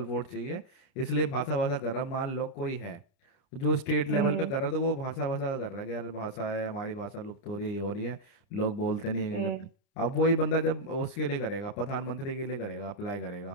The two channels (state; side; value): late; right; 29 ms